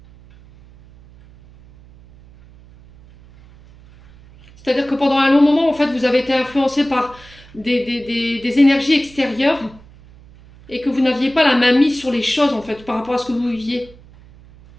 C'est-à-dire que pendant un long moment, en fait, vous avez été influencé par des énergies extérieures et que vous n'aviez pas la main mise sur les choses, en fait, par rapport à ce que vous viviez.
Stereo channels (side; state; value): right; noise; hum, 24 dB below the sound